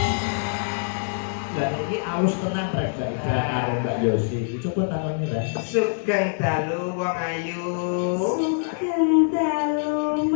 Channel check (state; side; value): silent; right; 62 dB below the other